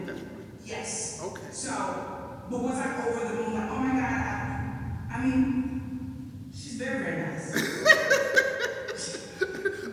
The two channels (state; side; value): identical; both; correlation 1.00